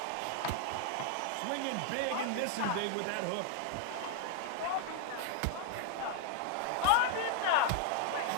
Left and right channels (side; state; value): both; different; correlation 0.00